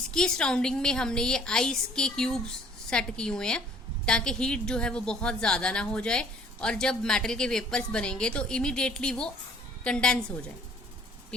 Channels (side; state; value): both; normal; correlation 0.56